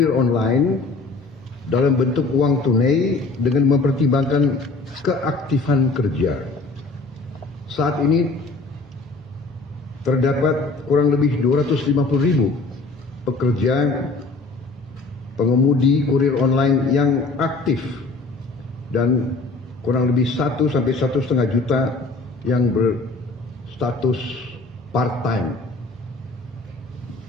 online dalam bentuk uang tunai dengan mempertimbangkan keaktifan kerja. Saat ini terdapat kurang lebih 250.000 pekerja pengemudi kurir online yang aktif dan kurang lebih 1 sampai 1,5 juta yang berstatus part-time,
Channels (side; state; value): right; quieter; 3.5 dB